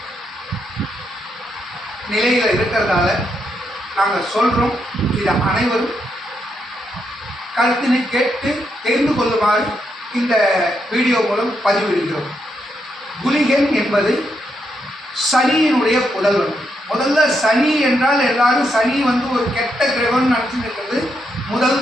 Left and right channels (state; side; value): normal; both; correlation 0.80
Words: நிலையில் இருக்கிறதால நாங்கள் சொல்கிறோம். இதை அனைவரும் கருத்தினை கேட்டு தெரிந்து கொள்ளுமாறு இந்த வீடியோ மூலம் பதிவிடுகிறோம். குளிகன் என்பது சனியினுடைய புதல்வன். முதல்ல சனி என்றால் எல்லாரும் சனி ஒரு கெட்ட கிரகம்னு நினச்சிட்டு இருக்கிறது